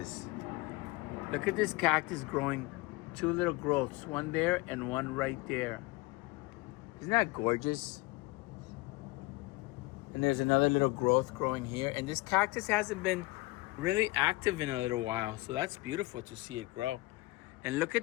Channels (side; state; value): right; quieter; 22.1 dB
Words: Look at this cactus growing two little growths, one there and one right there. Isn't that gorgeous? And there's another little growth growing here. And this cactus hasn't been really active in a little while. So that's beautiful to see it grow. And look at